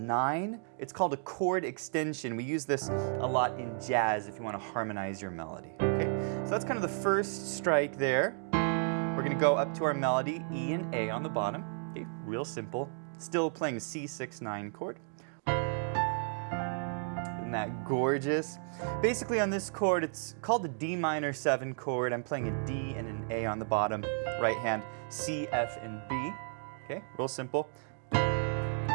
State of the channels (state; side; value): silent; left; 56 dB below the other